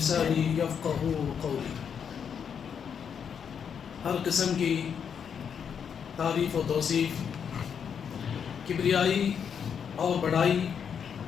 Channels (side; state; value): right; quieter; 7.4 dB